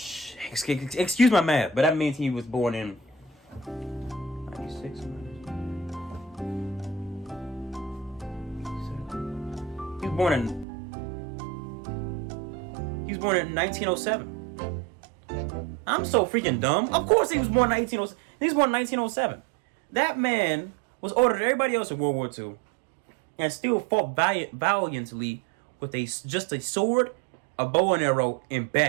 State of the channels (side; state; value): left; drops out; at 10.7 s